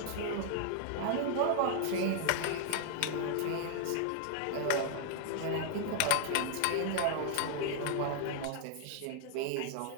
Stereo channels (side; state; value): both; different; correlation 0.00